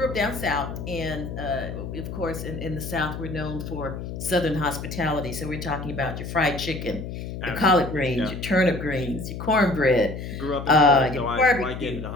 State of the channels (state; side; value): noise; left; hum, 7 dB below the sound